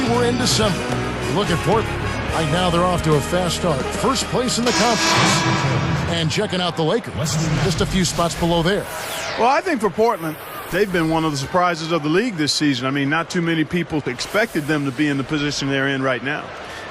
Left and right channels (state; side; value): identical; both; correlation 1.00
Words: we're in December. Look at Portland. Right now they're off to a fast start. First place in the conference. And checking out the Lakers. Just a few spots below there. Well, I think for Portland, they've been one of the surprises of the league this season. I mean, not too many people expected them to be in the position they're in right now.